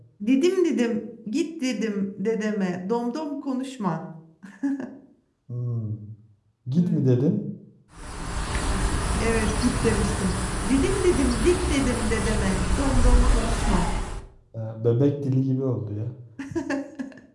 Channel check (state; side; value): identical; both; correlation 1.00